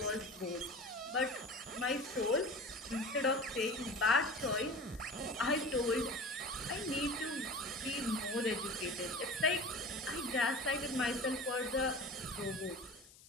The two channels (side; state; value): left; noise; hiss, 22 dB below the sound